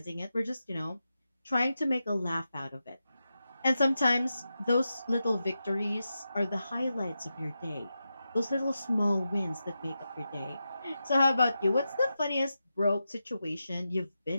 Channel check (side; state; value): both; inverted; correlation -0.90